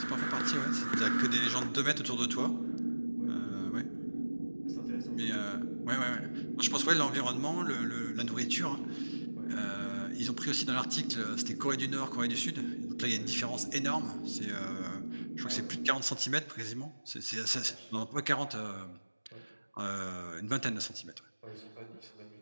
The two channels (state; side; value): inverted; both; correlation -1.00